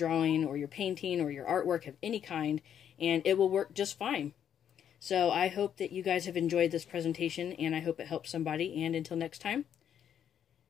or your painting or your artwork of any kind, and it will work just fine. So I hope that you guys have enjoyed this presentation, and I hope it helps somebody. And until next time,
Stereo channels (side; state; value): right; quieter; 9.1 dB